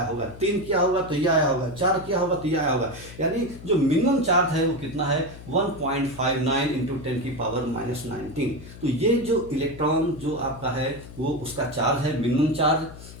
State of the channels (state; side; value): noise; left; hum, 16 dB below the sound